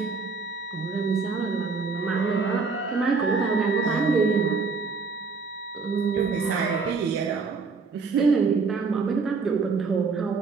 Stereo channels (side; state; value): left; quieter; 4.6 dB